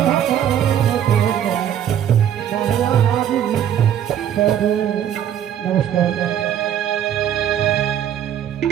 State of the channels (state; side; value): quieter; left; 9.9 dB